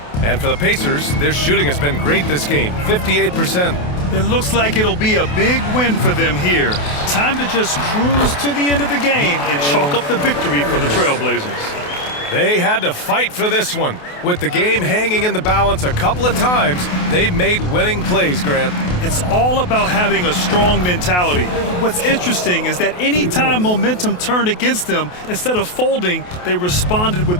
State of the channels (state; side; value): late; right; 28 ms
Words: And for the Pacers, their shooting has been great this game, 58%. It looks like it'll be a big win for them here. Time to just cruise to the end of the game and chalk up the victory for the Trailblazers. They had to fight for this one. With the game hanging in the balance a couple of times, they made winning plays, Grant. It's all about having a strong mentality. What's interesting is that anytime momentum turned against them, instead of folding, they responded